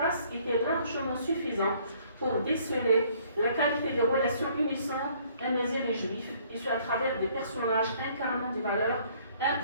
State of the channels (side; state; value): both; inverted; correlation -0.61